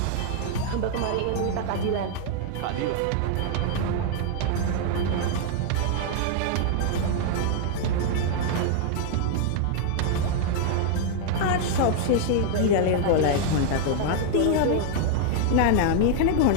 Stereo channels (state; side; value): different; both; correlation 0.00